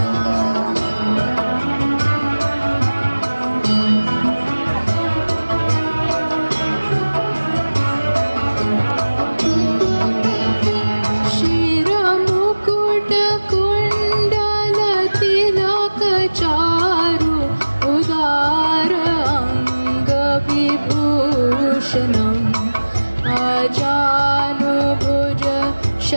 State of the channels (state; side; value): inverted; both; correlation -1.00